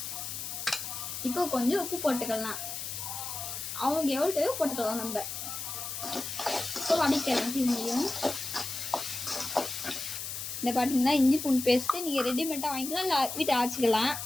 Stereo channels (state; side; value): noise; left; hiss, 6 dB below the sound